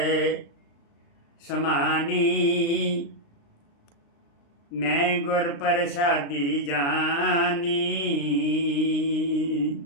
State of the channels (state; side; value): late; right; 35 ms